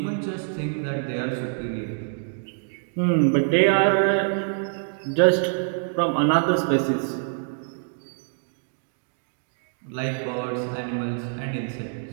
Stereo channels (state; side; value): silent; left; digital silence